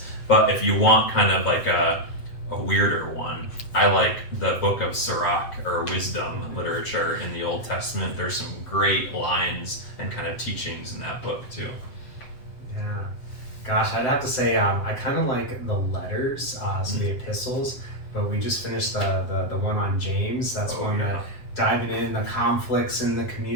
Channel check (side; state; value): right; late; 7.7 ms